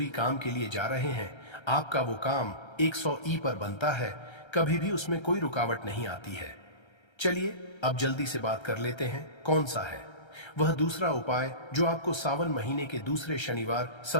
काम के लिए जा रहे हैं, आपका वो काम 100 ई पर बनता है, कभी भी उसमें कोई रुकावट नहीं आती है। चलिए अब जल्दी से बात कर लेते हैं कौन सा है वह दूसरा उपाय जो आपको सावन महीने के दूसरे शनिवार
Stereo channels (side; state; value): right; late; 1.3 ms